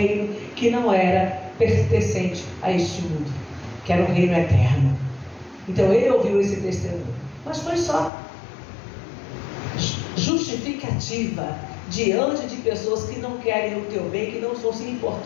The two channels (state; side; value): drops out; right; at 8.1 s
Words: que não era pertencente a este mundo, que era um reino eterno. Então ele ouviu esse testemunho, mas foi só justificativa diante de pessoas que não querem o teu bem, que não estão se